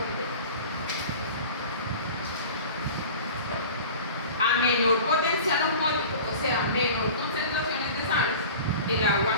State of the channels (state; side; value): inverted; both; correlation -0.38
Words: A menor potencial osmótico, o sea, menor concentraciones de sales, el